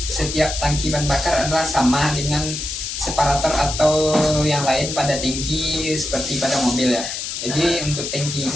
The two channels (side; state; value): left; noise; hiss, 5 dB below the sound